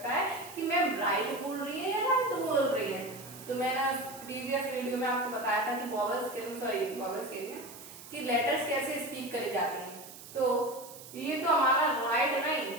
है कि मैम राइट बोल रही है या राइट बोल रही है। तो मैंने प्रीवियस वीडियो में आपको बताया था कि वॉवल्स के लिए कि लेटर्स कैसे स्पीक करे जाते हैं। तो ये तो हमारा राइट नहीं,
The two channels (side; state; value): right; noise; hiss, 16 dB below the sound